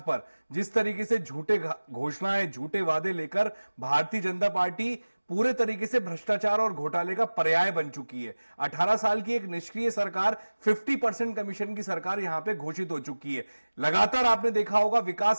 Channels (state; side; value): inverted; both; correlation -1.00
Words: पर जिस तरीके से झूठे घोषणाएं, झूठे वादे लेकर भारतीय जनता पार्टी पूरे तरीके से भ्रष्टाचार और घोटाले का पर्याय बन चुकी है। 18 साल की एक निष्क्रिय सरकार, 50% कमीशन की सरकार यहां पे घोषित हो चुकी है। लगातार आपने देखा होगा